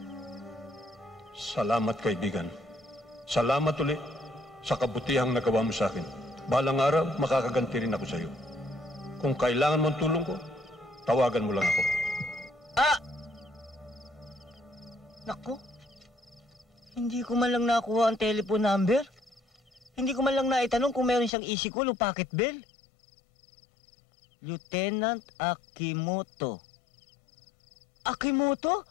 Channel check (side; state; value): right; drops out; at 21.3 s